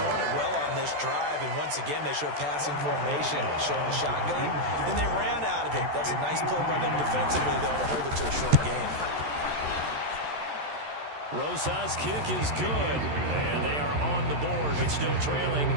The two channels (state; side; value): late; left; 14 ms